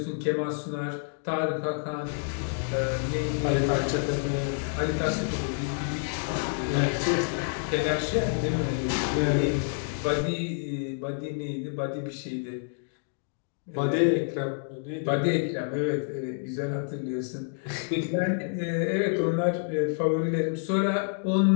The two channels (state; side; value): silent; right; digital silence